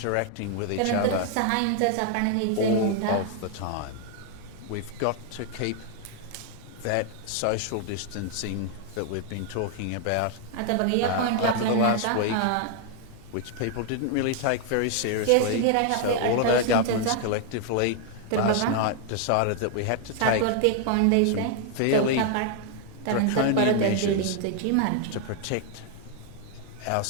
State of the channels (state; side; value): different; both; correlation 0.00